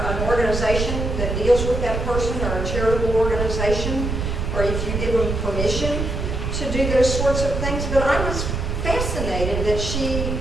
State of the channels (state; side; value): noise; right; rumble, 2 dB below the sound